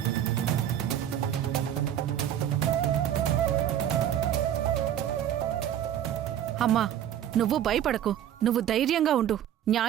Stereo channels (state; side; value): quieter; left; 10.7 dB